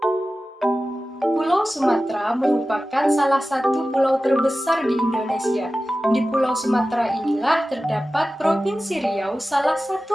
Pulau Sumatera merupakan salah satu pulau terbesar di Indonesia. Di Pulau Sumatera inilah terdapat Provinsi Riau, salah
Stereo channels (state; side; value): normal; both; correlation 0.95